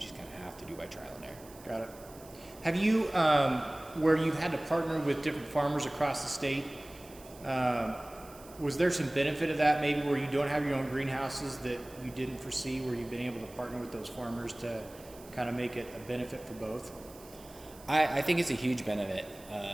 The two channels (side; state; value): right; noise; hiss, 21 dB below the sound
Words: kind of have to do by trial and error. Got it. Have you, where you've had to partner with different farmers across the state, was there some benefit of that, maybe where you don't have your own greenhouses that you didn't foresee, where you've been able to partner with those farmers to kind of make it a benefit for both? I think it's a huge benefit.